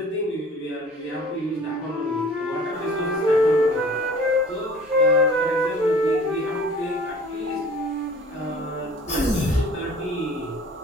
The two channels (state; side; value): normal; both; correlation 0.48